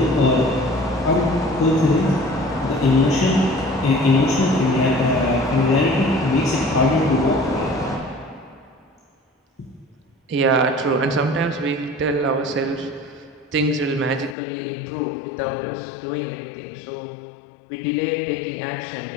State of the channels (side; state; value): right; drops out; at 14.4 s